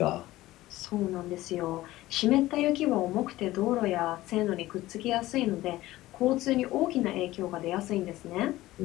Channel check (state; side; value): quieter; right; 16.8 dB